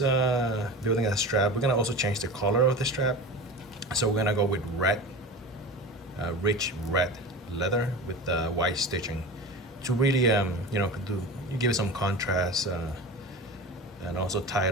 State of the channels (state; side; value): normal; both; correlation 0.31